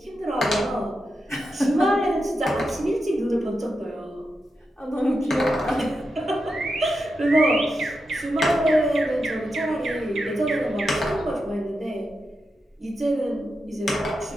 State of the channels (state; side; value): normal; both; correlation 0.88